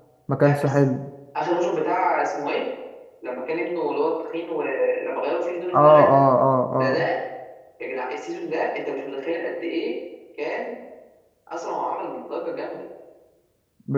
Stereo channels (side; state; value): both; identical; correlation 1.00